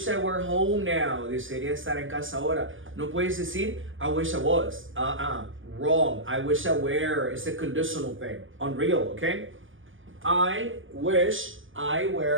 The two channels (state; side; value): late; left; 0.58 ms